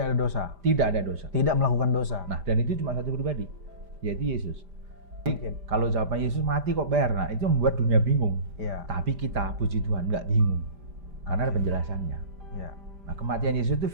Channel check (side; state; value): left; late; 5.0 ms